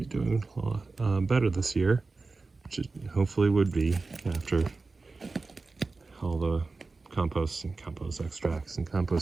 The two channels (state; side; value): quieter; left; 3.8 dB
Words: doing a lot better this year, which it hopefully would be after all the compost and compost extracts and